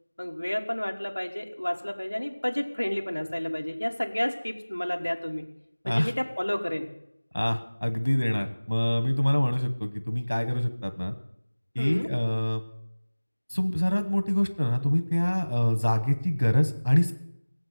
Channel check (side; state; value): both; inverted; correlation -1.00